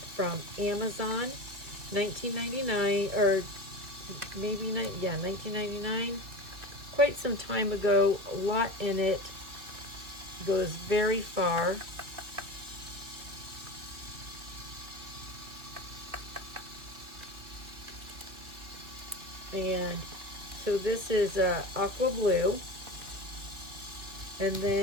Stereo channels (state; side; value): late; left; 2.6 ms